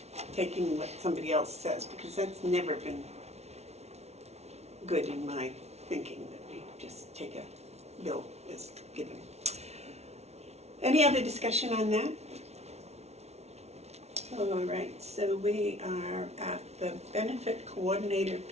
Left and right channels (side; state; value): left; late; 0.31 ms